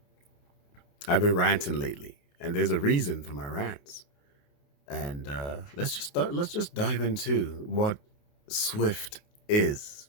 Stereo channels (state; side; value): late; right; 28 ms